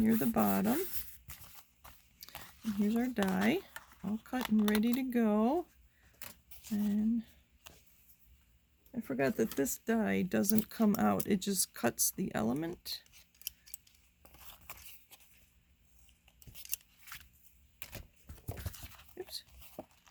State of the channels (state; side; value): identical; both; correlation 1.00